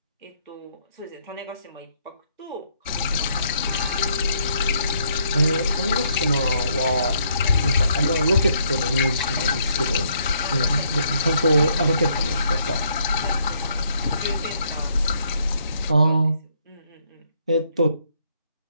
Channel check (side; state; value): both; inverted; correlation -0.71